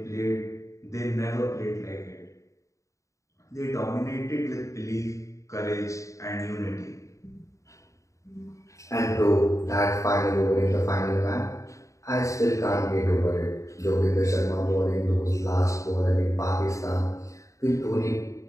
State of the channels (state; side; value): late; right; 0.15 ms